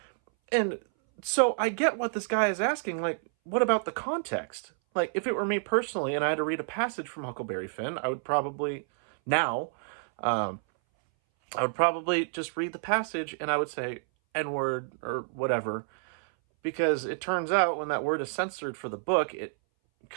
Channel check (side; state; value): left; silent; 58 dB below the other